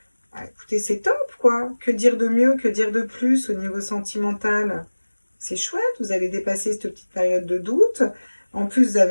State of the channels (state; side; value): inverted; both; correlation -1.00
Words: Ah, écoutez, c'est top, quoi. Que dire de mieux, que dire de plus au niveau sentimental? C'est chouette, vous allez dépasser cette petite période de doute. En plus, vous